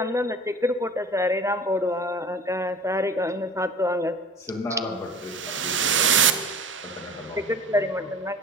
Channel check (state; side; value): normal; both; correlation 0.39